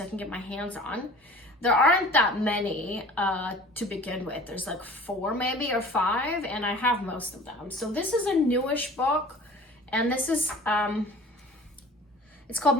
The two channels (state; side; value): normal; both; correlation 0.45